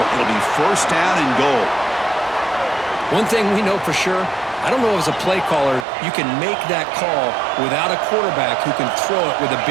be first down and goal. One thing we know for sure, I don't know as a play caller, you can make that call without a quarterback who can throw it with a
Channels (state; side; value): drops out; left; at 5.9 s